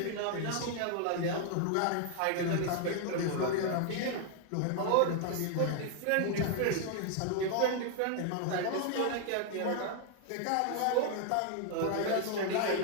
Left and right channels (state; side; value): different; both; correlation 0.00